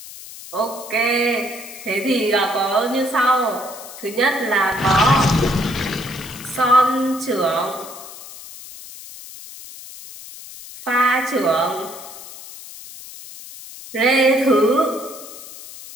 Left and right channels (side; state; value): left; noise; hiss, 15 dB below the sound